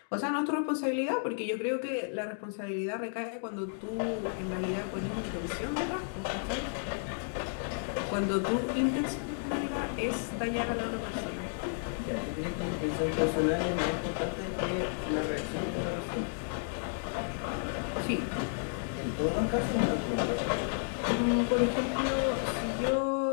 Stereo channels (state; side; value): silent; right; digital silence